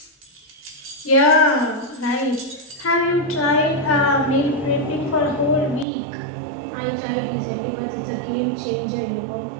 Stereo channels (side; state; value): left; drops out; at 5.9 s